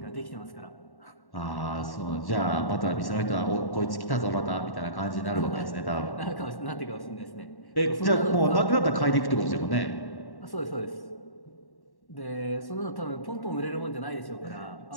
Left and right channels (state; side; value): late; right; 1.1 ms